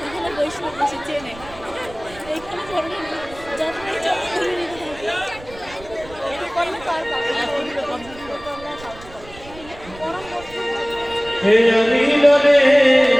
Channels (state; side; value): noise; right; rumble, 19 dB below the sound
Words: বৈষ্ণব বেশি চেনে এইখানে ধরনের যতই যত ধরে নিতে থাকি করলে তার